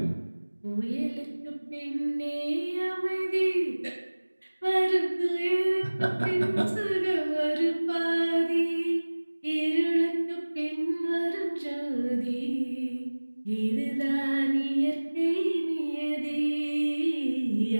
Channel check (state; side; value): inverted; both; correlation -1.00